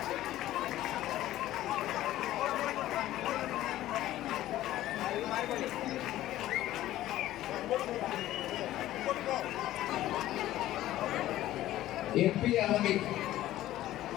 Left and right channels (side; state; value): right; quieter; 14.4 dB